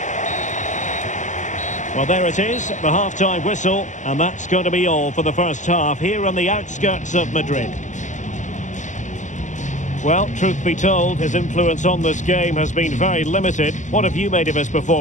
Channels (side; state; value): right; late; 0.36 ms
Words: Well, there it is, the half-time whistle, and that's going to be all for the first half here on the outskirts of Madrid. Well, truth be told, his influence on this game has been very limited. What have you made of his